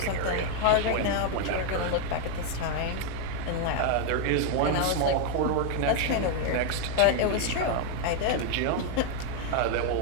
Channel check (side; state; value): both; different; correlation 0.01